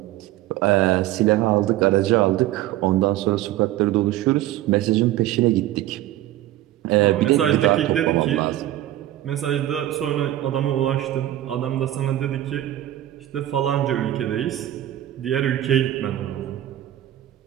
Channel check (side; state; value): left; quieter; 14.0 dB